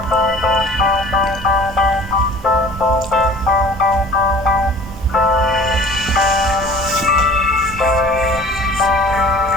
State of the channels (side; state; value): both; normal; correlation 0.47